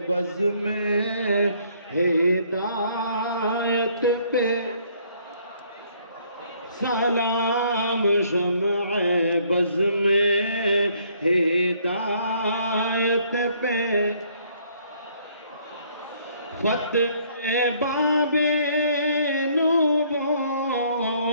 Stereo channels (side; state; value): both; inverted; correlation -0.64